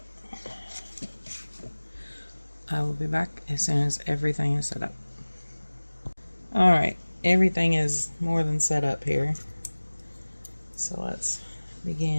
I will be back as soon as everything is set up. Alright, everything is more than set up here. So let's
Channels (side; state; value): both; inverted; correlation -1.00